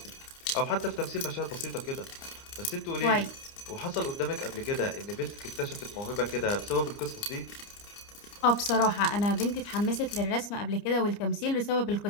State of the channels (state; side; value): late; right; 29 ms